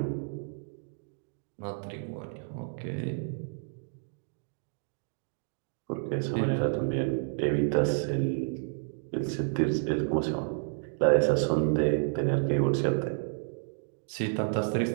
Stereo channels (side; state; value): left; silent; digital silence